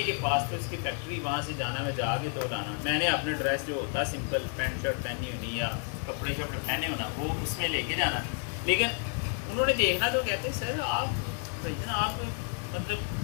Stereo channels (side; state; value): right; quieter; 39.9 dB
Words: کے پاس تو اس کی فیکٹری, وہاں سے جانا, میں جا کے تو لانا. میں نے اپنے ڈریس جو ہوتا سمپل پینٹ شرٹ پہنی ہونی یا کپڑے شپڑے پہنے ہونا وہ اس میں لے کے جانا. لیکن انہوں نے دیکھنا تو کہتے ہیں سر آپ آپ مطلب